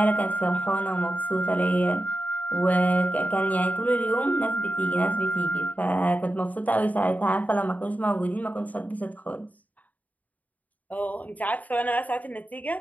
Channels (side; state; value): right; late; 0.075 ms